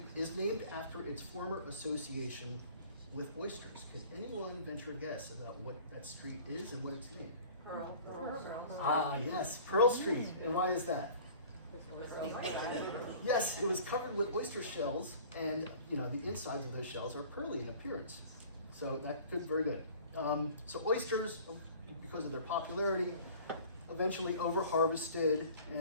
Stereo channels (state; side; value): inverted; both; correlation -0.46